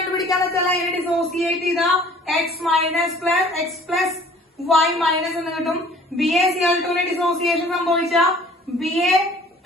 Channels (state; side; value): normal; both; correlation 0.52